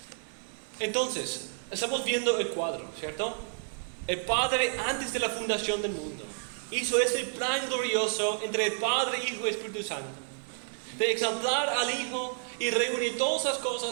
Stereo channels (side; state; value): left; silent; 57 dB below the other